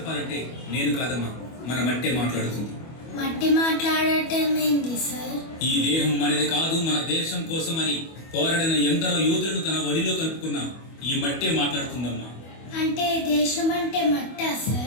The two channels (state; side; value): late; right; 25 ms